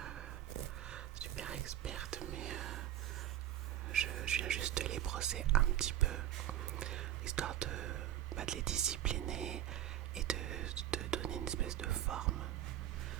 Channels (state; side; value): quieter; left; 12.2 dB